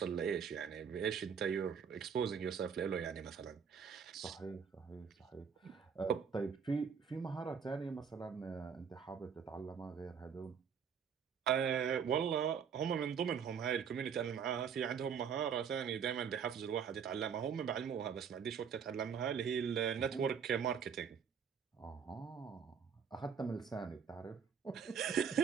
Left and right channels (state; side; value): quieter; left; 7.0 dB